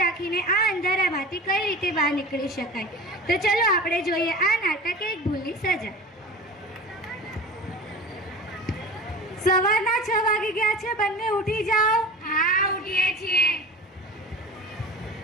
રાખીને આ અંધારામાંથી કઈ રીતે બહાર નીકળી શકાય. તો ચલો આપણે જોઈએ આ નાટક એક ભૂલની સજા. સવારના 6 વાગી ગયા છે. બંને ઉઠી જાઓ. હા, ઉઠીએ છીએ.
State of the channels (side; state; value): both; normal; correlation 0.35